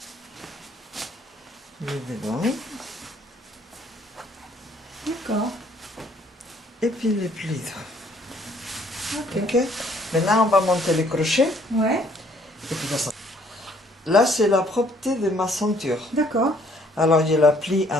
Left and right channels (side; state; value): both; normal; correlation 0.63